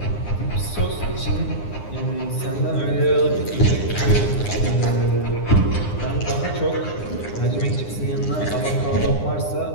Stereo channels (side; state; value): right; late; 9.8 ms